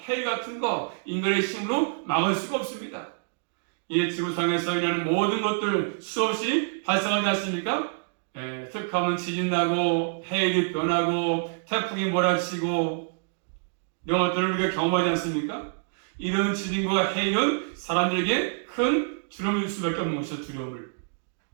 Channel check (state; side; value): silent; left; digital silence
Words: 해일 같은 거, 인간의 힘으로 막을 수가 없습니다. 이 지구상에서 일어나는 모든 것들 수없이 발생하지 않습니까? 툭하면 지진 나고, 해일이 변하고, 태풍이 몰아치고, 이런 것들을 우리가 경험하지 않습니까? 이런 지진과 해일은 사람들에게 큰 두려움을 줄 수밖에 없는 것이죠. 두려움을.